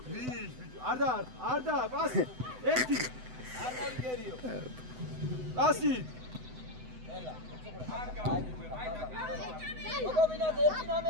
არ და პასი ერთი არ მოგერიო პასი ელა გოგობინაზე ერთი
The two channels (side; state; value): left; late; 7.9 ms